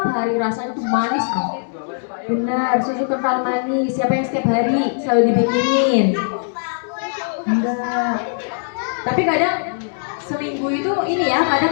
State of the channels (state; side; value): silent; right; digital silence